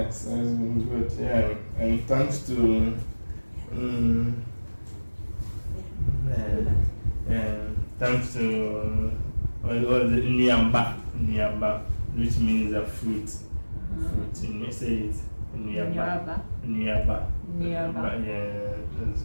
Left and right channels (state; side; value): inverted; both; correlation -1.00